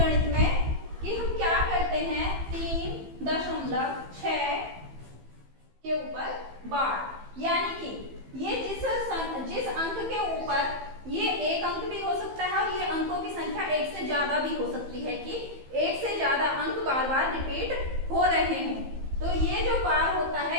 में कि हम क्या करते हैं 3.6 के ऊपर बार, यानी कि ये जिस अंक के ऊपर ये एक अंक भी हो सकता है और ये अंकों की संख्या एक से ज्यादा भी हो सकती है कि एक से ज्यादा अंक बार बार रिपीट हो रहे हों। तो ये जो बार होता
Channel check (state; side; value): late; left; 15 ms